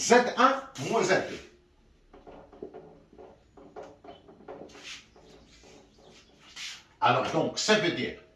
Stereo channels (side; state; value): both; identical; correlation 1.00